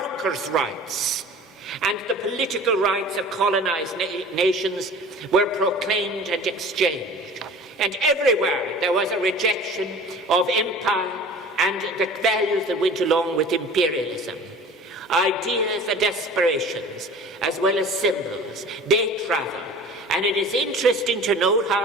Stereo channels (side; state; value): both; normal; correlation 0.42